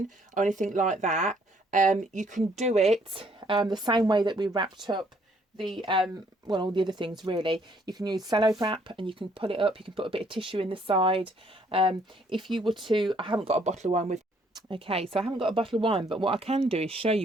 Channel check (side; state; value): both; normal; correlation 0.65